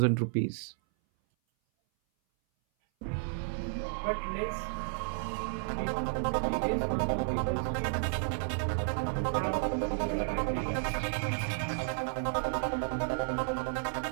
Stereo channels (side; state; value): left; silent; 56 dB below the other